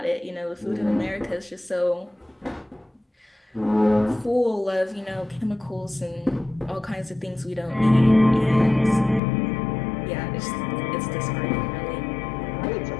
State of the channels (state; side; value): drops out; right; at 9.2 s